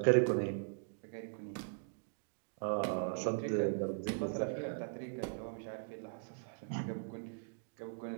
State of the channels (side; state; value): left; silent; digital silence